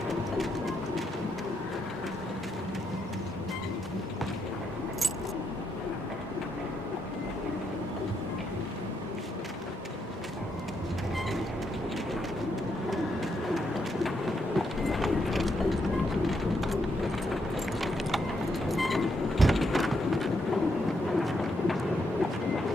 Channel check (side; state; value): both; normal; correlation 0.79